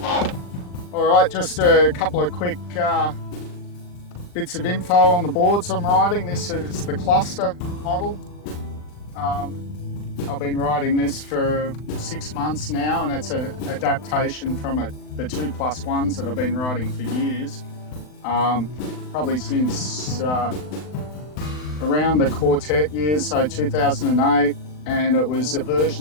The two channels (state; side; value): late; right; 39 ms